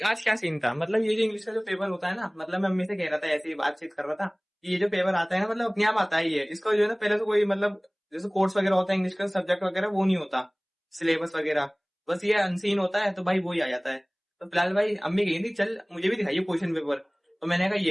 आज क्या सीन था। मतलब ये जो इंग्लिश का जो पेपर होता है ना, मतलब मैं अम्मी से कह रहा था, ऐसे ही बातचीत कर रहा था कि ये जो पेपर आता है ना, मतलब अपने आप आता ही है। इसको जो है ना पहले तो कोई मतलब जैसे कोर्स वगैरह होता है इंग्लिश का सब्जेक्ट वगैरह, वो नहीं होता सिलेबस वगैरह, बस ये अनसीन होता है। तो भाई वो ही आ जाता है। तो फिलहाल भाई अम्मी कही थी चल मुझे भी दिखाइए क्वेश्चन पेपर। तो मैंने कहा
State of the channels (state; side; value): identical; both; correlation 1.00